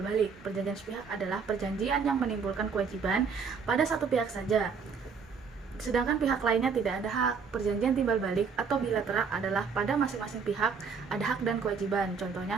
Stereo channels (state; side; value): quieter; left; 5.7 dB